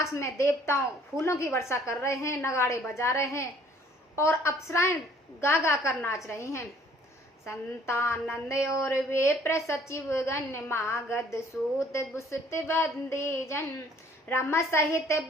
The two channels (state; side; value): normal; both; correlation 0.58